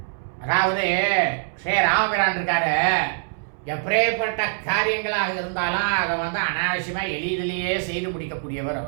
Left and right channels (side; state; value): left; silent; 63 dB below the other